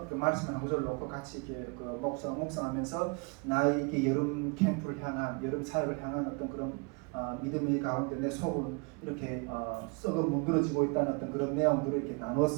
그 말씀 한 구절 놓고 같이 이렇게 묵상하면서 나의 이렇게 여름 캠프를 향한 여름 사역을 향한 어떤 그런 믿음의 가운데 내 속은 이렇게 썩어 문드러지고 있다는 어떤 그런 내용들을 이렇게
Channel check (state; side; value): quieter; left; 31.8 dB